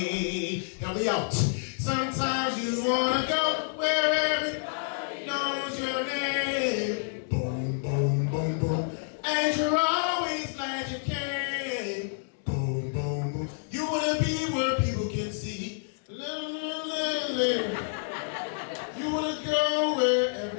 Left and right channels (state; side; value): silent; right; digital silence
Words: Help me out. Sometimes you wanna go where everybody knows your name. Boom, boom, boom, boom. And you're always glad you came. Boom, boom, boom. You wanna be where people can see. You wanna go where